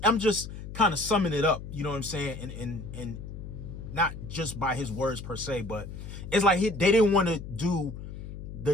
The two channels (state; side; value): noise; left; hum, 10 dB below the sound